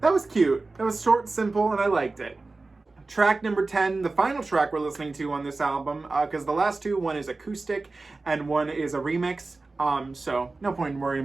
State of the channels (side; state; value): left; quieter; 3.5 dB